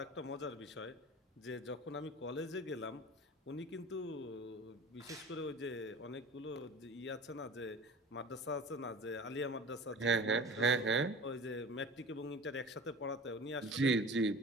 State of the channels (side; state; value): both; normal; correlation 0.38